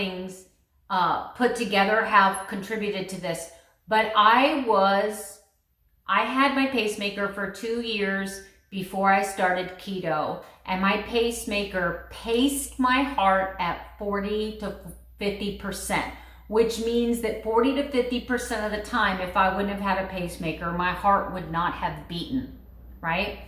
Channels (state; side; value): identical; both; correlation 1.00